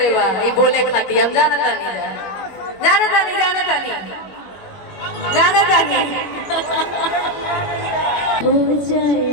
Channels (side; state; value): right; late; 21 ms